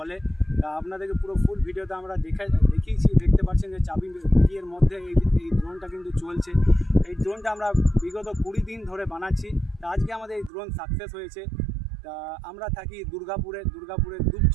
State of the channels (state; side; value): drops out; left; at 10.5 s